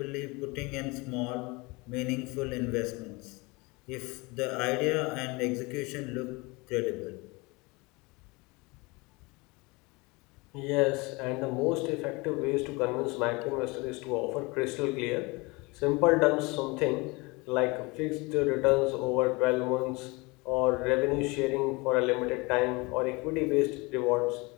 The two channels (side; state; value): right; quieter; 25.6 dB